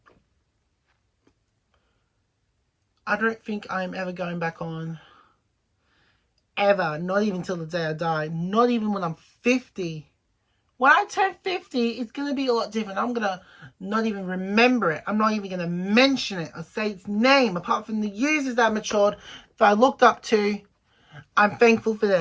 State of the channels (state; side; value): identical; both; correlation 1.00